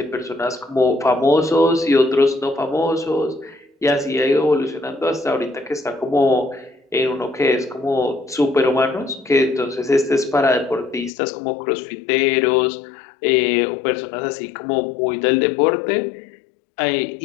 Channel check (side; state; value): right; drops out; at 11.1 s